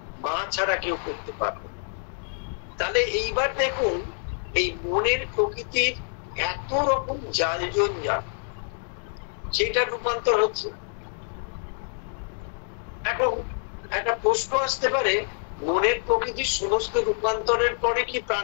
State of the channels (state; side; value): silent; right; 57 dB below the other